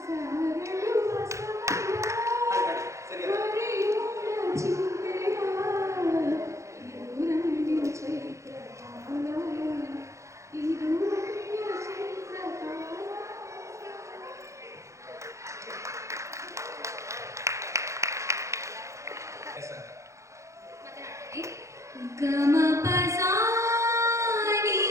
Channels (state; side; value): late; left; 0.14 ms